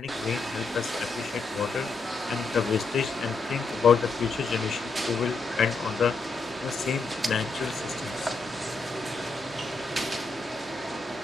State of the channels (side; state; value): right; quieter; 3.8 dB